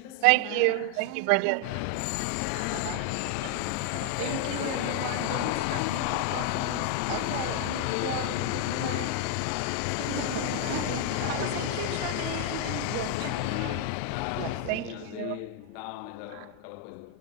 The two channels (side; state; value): both; different; correlation 0.00